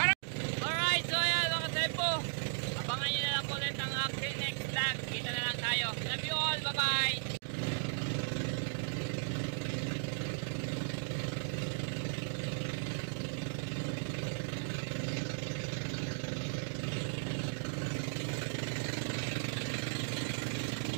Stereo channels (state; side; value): silent; left; digital silence